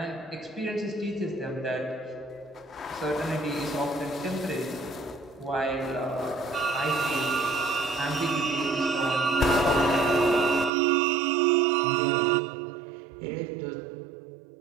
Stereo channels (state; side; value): drops out; left; at 10.7 s